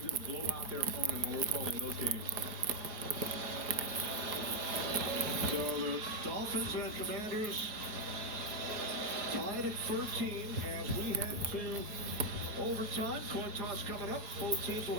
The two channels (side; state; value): left; late; 4.6 ms